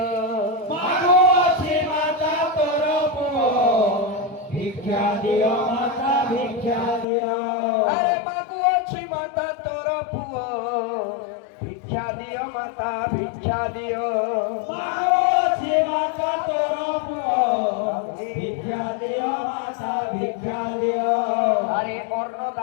মাগো আছে মাতা তোর পুয় ভিক্ষা দিও মাতা ভিক্ষা দিও আরে মাগো আছে মাতা তোর পুয়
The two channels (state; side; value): drops out; right; at 7.1 s